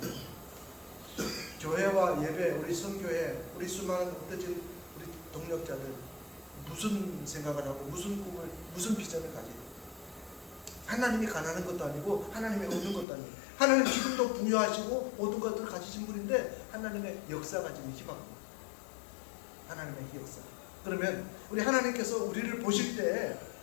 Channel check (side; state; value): right; drops out; at 13.1 s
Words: 교회와 예배, 우리 선교회, 우리 수많은 흩어진 우리 동력자들 무슨 생각을 하고 무슨 꿈을, 무슨 비전을 가지고 하나님이 가난한 것도 아니고 하나님이 없는 것도 아니고 하나님 지금도 부여하시고 모든 것들을 가지신 분인데 하나님의 역사 가지는 희망입니다. 하나님의 역사. 그러면 우리 하나님께서 우리를 보실 때